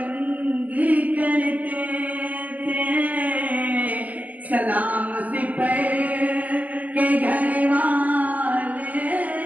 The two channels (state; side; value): late; left; 0.076 ms